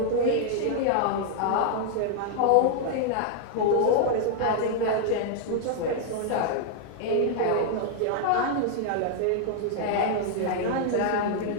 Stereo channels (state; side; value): different; both; correlation 0.00